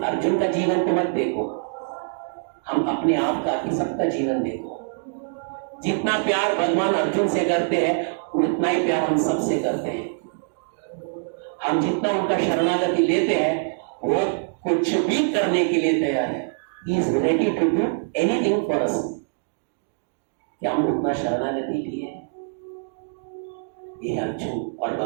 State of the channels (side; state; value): left; silent; digital silence